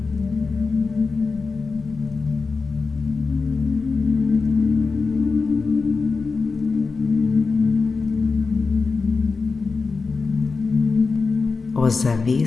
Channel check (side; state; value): right; quieter; 4.4 dB